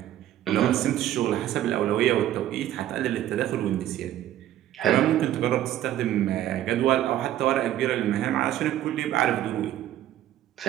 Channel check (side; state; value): left; quieter; 12.6 dB